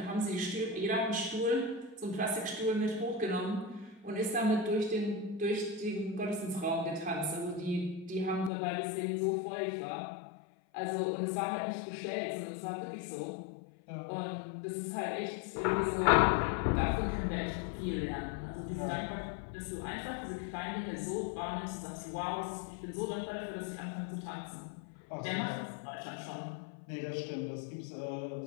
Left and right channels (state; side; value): drops out; right; at 8.5 s